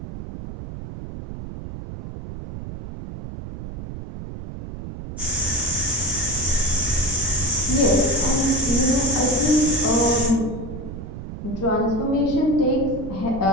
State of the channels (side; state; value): right; noise; rumble, 10 dB below the sound